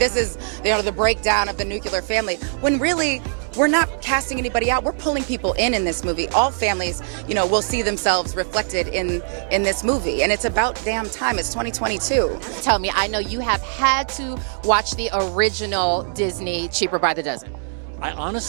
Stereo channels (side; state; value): left; silent; 63 dB below the other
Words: is, you know, the breakdown of the nuclear family. When really, we're not casting anybody out. We're pulling people in this movie. All families, you know, will see themselves reflected in this movie. And it's about damn time. It's 2022. Tell me, I know you have had to watch the original Disney Cheaper by the Dozen. I